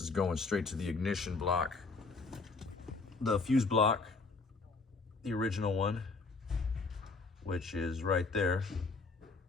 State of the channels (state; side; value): quieter; right; 4.1 dB